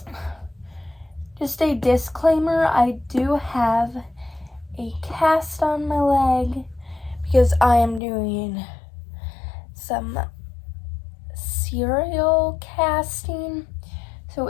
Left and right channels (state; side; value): drops out; right; at 8.0 s